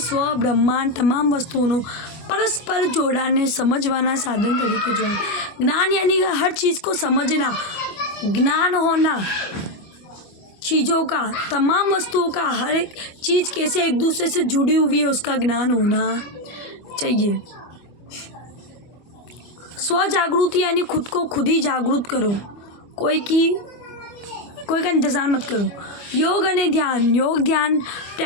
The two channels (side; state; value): right; late; 24 ms